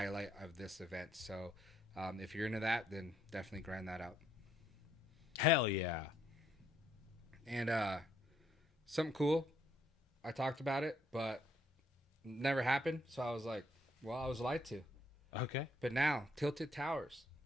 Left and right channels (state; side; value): normal; both; correlation 0.71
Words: of this event. So, if you're into that, then definitely grind that out. hell yeah. And something cool, I talked about it, but never happened. So I was like, well, I was lied to. Okay. But now, Tilted Towers